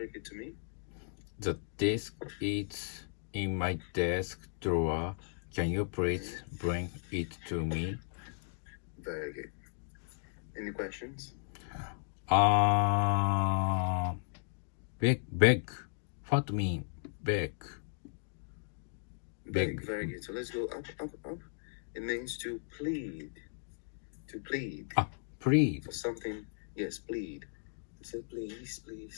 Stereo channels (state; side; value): silent; right; digital silence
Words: it to me? The disc is in my desk drawer. Can you please bring it to me? Very good. Any questions? Beg. What mean beg? Beg. Very good. So let's go up. It means to plead. To plead. Plead. For something. Yes, plead. So please.